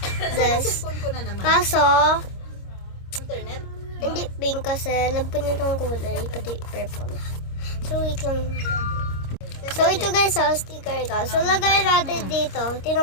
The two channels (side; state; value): right; late; 26 ms